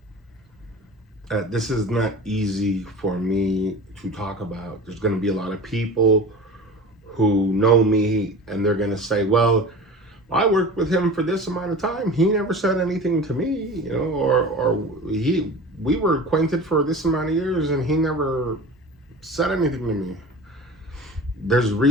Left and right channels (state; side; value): normal; both; correlation 0.35